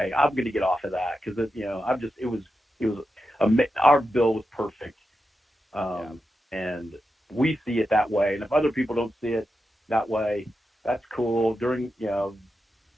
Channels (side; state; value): both; normal; correlation 0.89